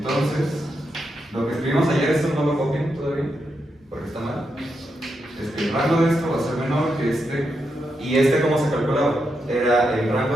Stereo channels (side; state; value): both; normal; correlation 0.84